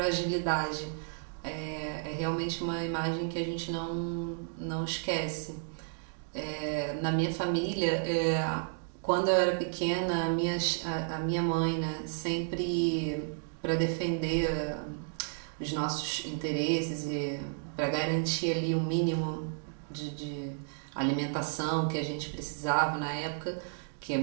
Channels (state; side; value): silent; left; digital silence